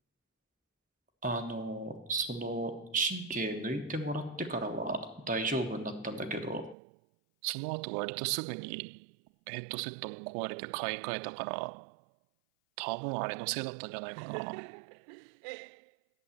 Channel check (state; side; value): drops out; left; at 6.8 s